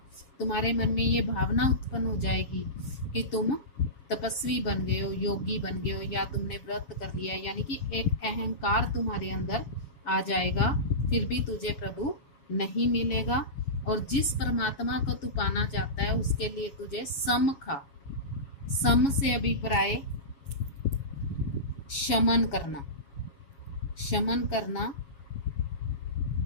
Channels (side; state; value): right; late; 7.2 ms